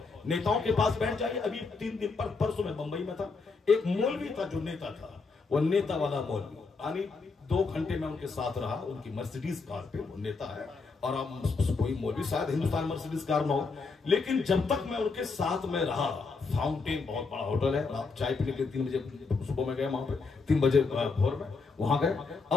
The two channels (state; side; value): quieter; right; 4.4 dB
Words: नेताओं के पास बैठ जाइए। अभी 3 दिन परसों में बंबई में था, एक मौलवी था जो नेता था, वो नेता वाला मौलवी, यानी 2 घंटे में उनके साथ रहा, उनकी मर्सिडीज कार पे, वो नेता है और अब कोई मौलवी शायद हिंदुस्तान मर्सिडीज कार में हो, लेकिन जब तक मैं उनके साथ में रहा, फाउंटेन बहुत बड़ा होटल है, आप चाय पीने के लिए 3 बजे सुबह में गए, वहां पे 3 बजे भोर में वहां गए।